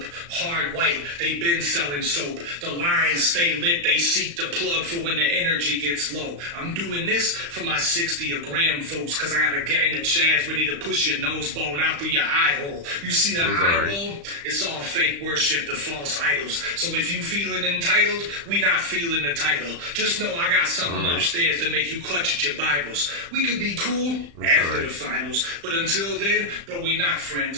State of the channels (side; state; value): left; late; 35 ms